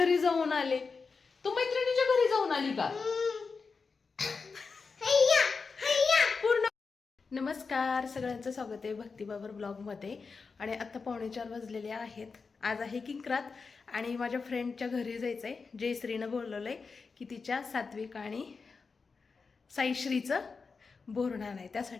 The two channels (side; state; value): right; quieter; 4.8 dB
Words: जाऊन आले. तू मैत्रिणीच्या घरी जाऊन आली का? पूर्ण. नमस्कार, सगळ्यांचं स्वागत आहे भक्तिबाबर ब्लॉगमध्ये. आणि आता 3:45 वाजलेले आहेत. आज आहे किंक्रात आणि माझ्या फ्रेंडच्या घरी जायचं आहे. जयश्रीनं बोलवलं आहे की तिच्या सात्विक आणि साईश्रीचं बोरणार आहे,